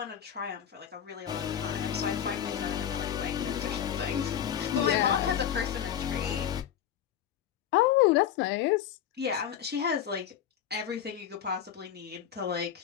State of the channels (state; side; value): quieter; right; 9.7 dB